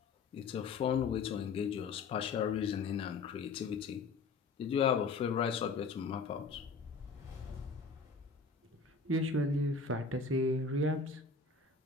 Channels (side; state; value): right; quieter; 4.5 dB